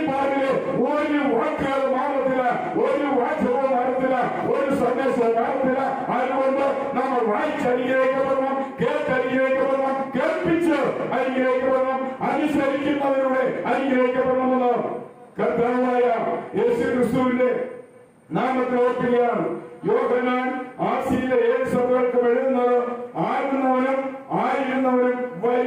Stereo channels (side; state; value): both; identical; correlation 1.00